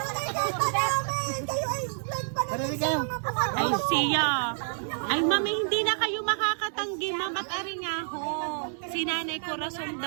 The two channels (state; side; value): silent; left; digital silence